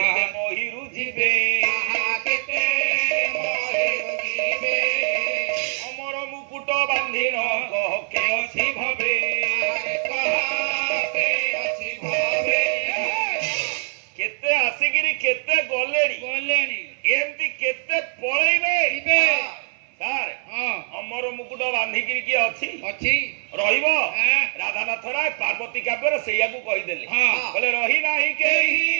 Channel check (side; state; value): left; silent; 61 dB below the other